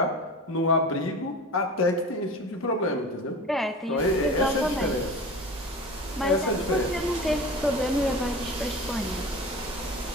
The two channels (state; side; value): normal; both; correlation 0.34